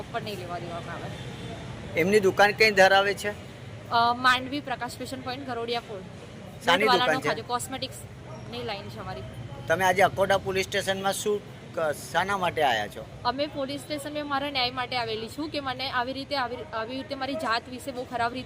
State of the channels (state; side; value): identical; both; correlation 1.00